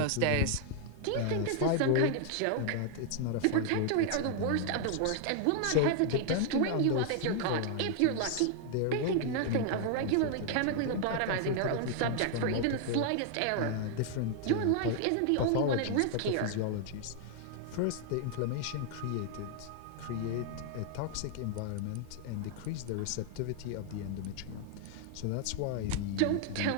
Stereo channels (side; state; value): both; different; correlation 0.00